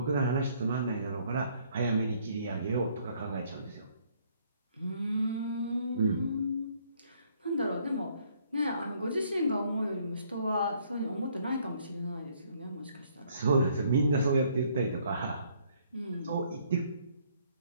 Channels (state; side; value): inverted; both; correlation -0.65